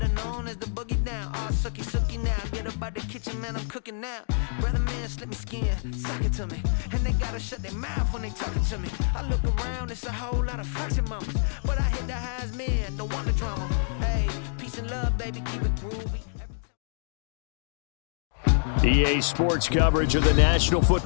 known as the boogie down. All sookie now, get up out the kitchen, man, I'm cooking now. Brother man, slip me skin, suck it to me, and they gotta shut their mouth when they talking to me. I look around, it's a whole lot of flexing mamas, but I hit the highs, man, don't want the drama. Hey, peace and love, baby, keep it groovy. EA Sports coverage of the National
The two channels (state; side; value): silent; right; digital silence